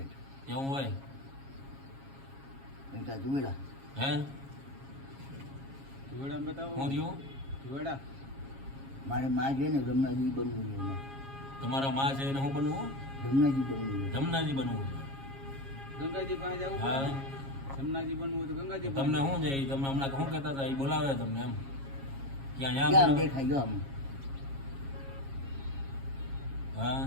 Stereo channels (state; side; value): late; left; 7.3 ms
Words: એવું હોય જુવેડા હે જુવેડા બતાવો. શું થયું? જુવેડા મારે માં છે ને જમનાજી બનવું છે એને. તમારા માં છે એને શું બનવું? જમનાજી બનવું છે. જમનાજી બનવું છે. ગંગાજી પાસે જવું હા પડે. જમનાજી બનવું હોય તો ગંગાજી પાસે તમને શું છે ઈ તમે હમણાં શું કહેતા હતા? એ બોલાવે તમને એમ ક્યાં ક્યાં યા દેખાય જો આમ હા